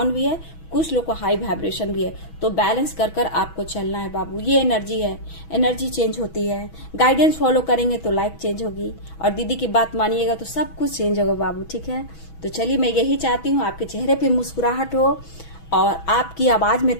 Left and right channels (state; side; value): late; right; 6.1 ms